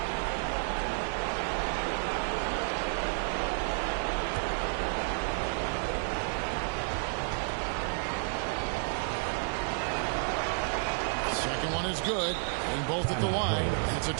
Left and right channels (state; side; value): silent; left; 55 dB below the other